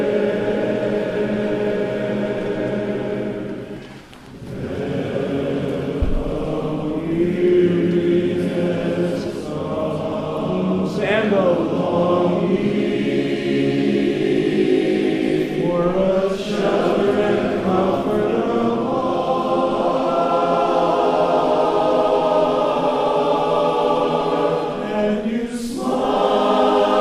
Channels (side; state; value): both; identical; correlation 1.00